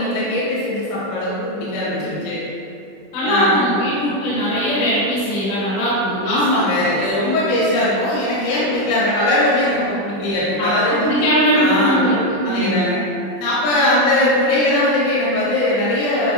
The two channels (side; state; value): right; late; 20 ms